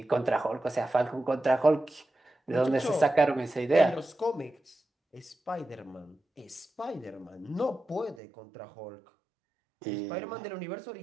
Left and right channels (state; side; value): drops out; left; at 8.2 s